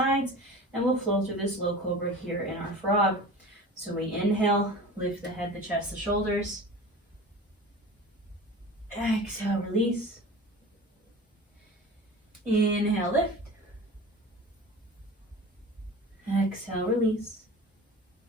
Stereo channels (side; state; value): both; normal; correlation 0.37